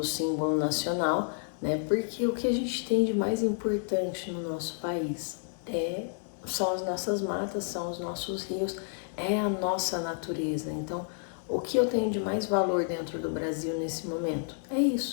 símbolo nacional, né? Porque o que a gente tem de mais importante no nosso país são as nossas matas, são os nossos rios, é a nossa natureza. Então, o que eu tenho de mais valor dentro do Brasil nesse momento é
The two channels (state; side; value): silent; right; digital silence